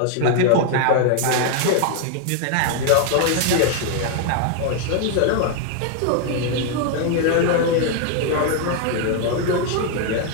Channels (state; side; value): different; both; correlation 0.00